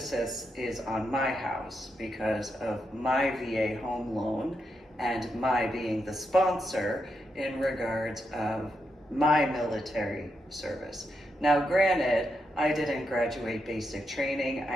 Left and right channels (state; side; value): normal; both; correlation 0.83